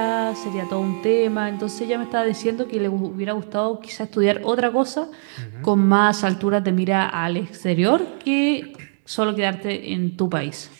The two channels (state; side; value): silent; left; digital silence